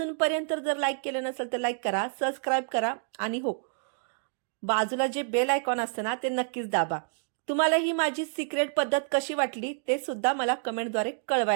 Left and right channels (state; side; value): silent; left; digital silence